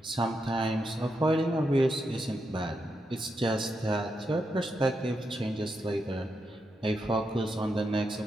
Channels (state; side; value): normal; both; correlation 0.84